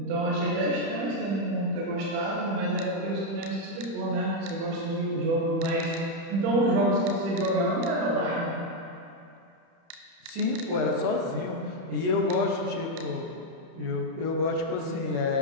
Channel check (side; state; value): left; late; 30 ms